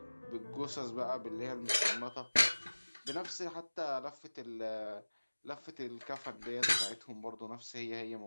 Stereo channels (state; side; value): inverted; both; correlation -1.00